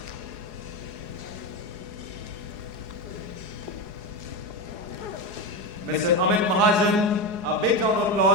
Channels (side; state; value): left; late; 4.8 ms